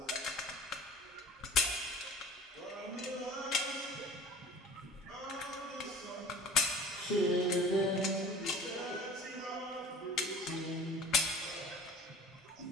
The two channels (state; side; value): normal; both; correlation 0.43